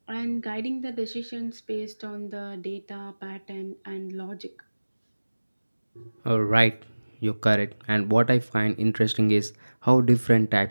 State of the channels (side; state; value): both; inverted; correlation -1.00